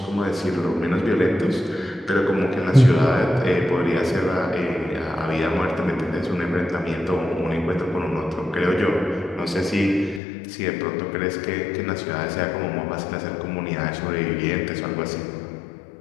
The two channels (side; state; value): right; drops out; at 10.2 s